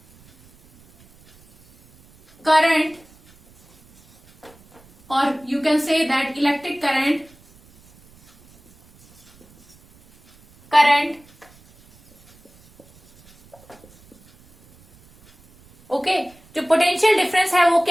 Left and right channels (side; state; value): right; noise; rumble, 29 dB below the sound